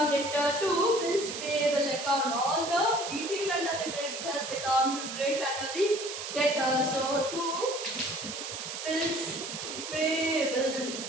debtor to bills payable account. All the detail under the creditors account should write under the debtor. So to bills payable.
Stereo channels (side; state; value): right; noise; hiss, 7 dB below the sound